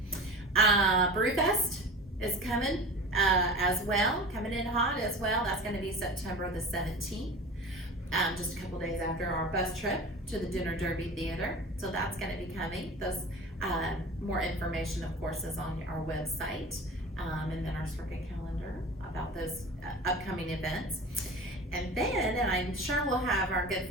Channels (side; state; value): both; normal; correlation 0.35